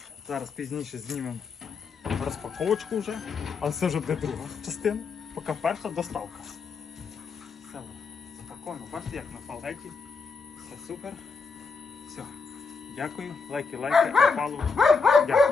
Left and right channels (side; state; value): right; quieter; 4.8 dB